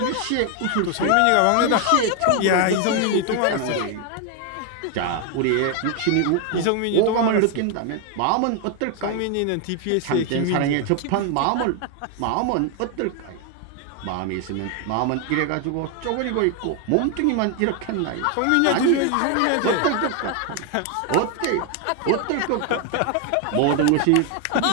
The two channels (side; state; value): both; different; correlation 0.01